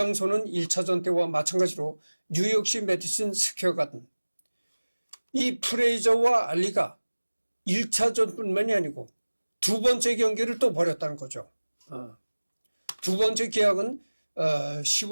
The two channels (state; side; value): inverted; both; correlation -1.00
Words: 1차전 때와 마찬가지로 뉴욕시 메디슨 스퀘어 가든. 이 프레이저와 알리가 1차전뿐만이 아니고 두 번째 경기를 또 벌였다는 거죠. 두 번째 계약은